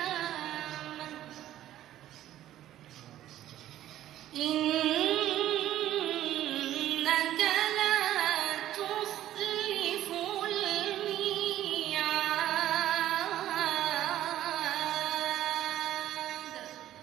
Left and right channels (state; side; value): quieter; left; 12.9 dB